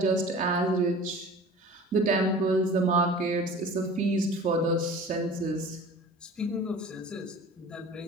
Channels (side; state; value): both; normal; correlation 0.41